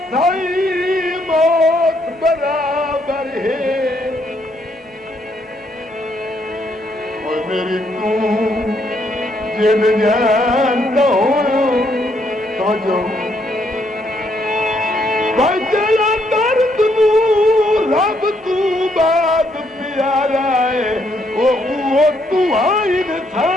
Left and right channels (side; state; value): both; normal; correlation 0.73